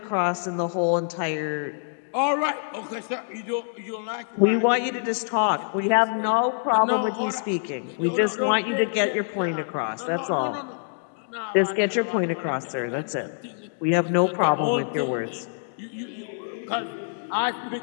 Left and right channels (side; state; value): right; silent; digital silence